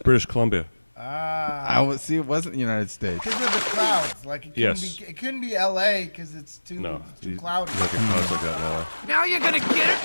British Columbia. I would see. It wasn't the United States. Because of the clouds, like it couldn't Yes. be. It couldn't be L.A. because it's too No, too you cloudy. don't get clouds like that in LA. Now you're gonna get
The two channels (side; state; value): both; inverted; correlation -1.00